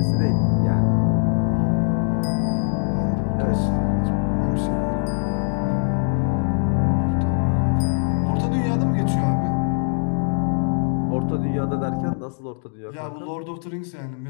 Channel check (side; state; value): right; silent; 55 dB below the other